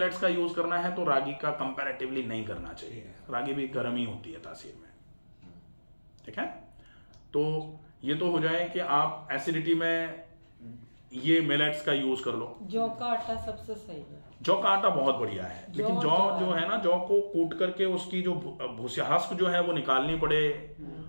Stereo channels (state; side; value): inverted; both; correlation -1.00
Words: का यूज करना है तो रागी का कंपैरेटिवली नहीं करना चाहिए। रागी भी गर्म ही होती है तासीर में। ठीक है, तो ये तो हो जाए कि आप एसिडिटी में ये मिलेट्स का यूज कर लो। जौ का आटा सबसे सही है, जौ का आटा बहुत बढ़िया है, लेकिन जौ जो है ना, जौ को कूट करके उसकी जो भूस्यास्क जो है वो निकालनी पड़े,